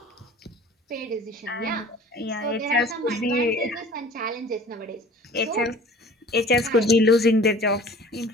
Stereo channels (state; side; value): normal; both; correlation 0.46